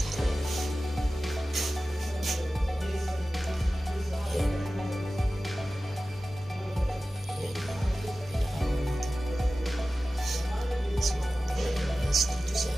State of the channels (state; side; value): normal; both; correlation 0.95